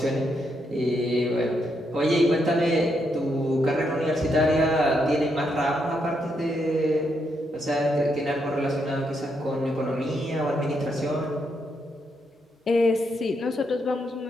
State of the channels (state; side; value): normal; both; correlation 0.79